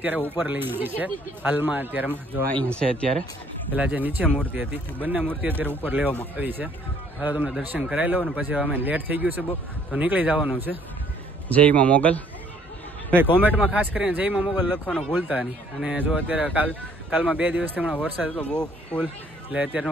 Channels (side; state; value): both; normal; correlation 0.61